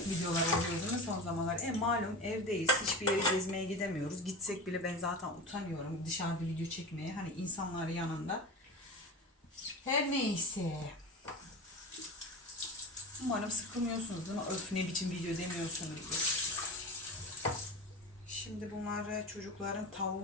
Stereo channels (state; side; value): normal; both; correlation 0.28